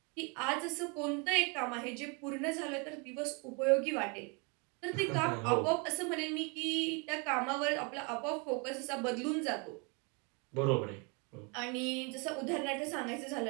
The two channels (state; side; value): quieter; left; 32.2 dB